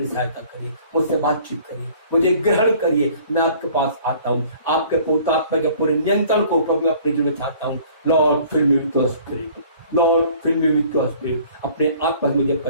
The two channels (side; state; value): both; inverted; correlation -0.53